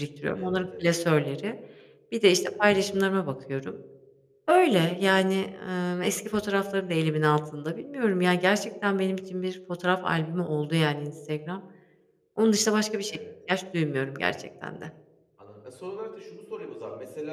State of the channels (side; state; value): both; identical; correlation 1.00